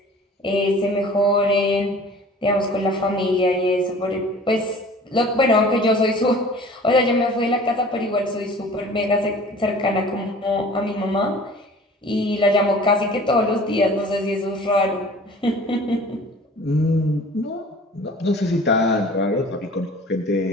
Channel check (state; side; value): normal; both; correlation 0.46